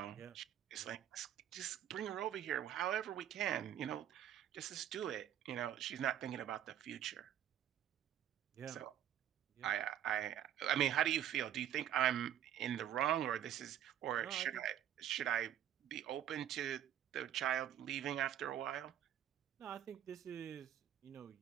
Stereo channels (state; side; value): quieter; left; 10.6 dB